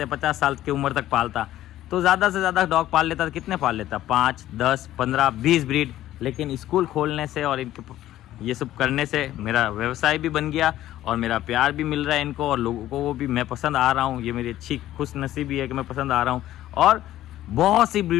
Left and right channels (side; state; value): right; quieter; 13.7 dB